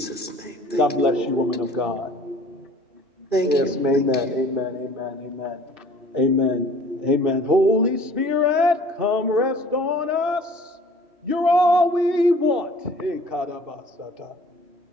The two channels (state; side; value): late; left; 2.7 ms